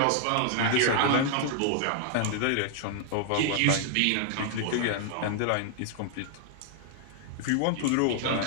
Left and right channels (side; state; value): both; different; correlation 0.00